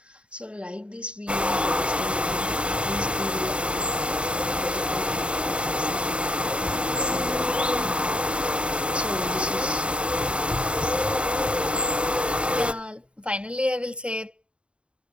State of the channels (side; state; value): left; late; 0.056 ms